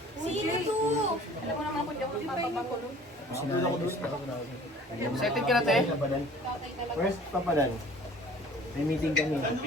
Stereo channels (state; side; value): normal; both; correlation 0.49